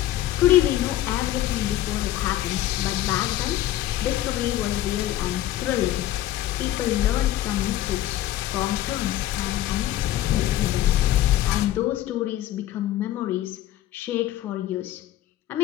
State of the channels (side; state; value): right; quieter; 13.8 dB